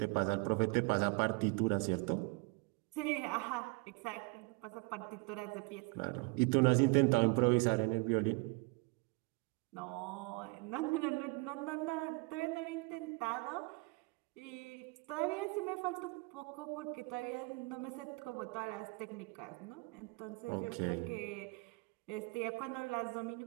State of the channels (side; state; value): left; quieter; 28.6 dB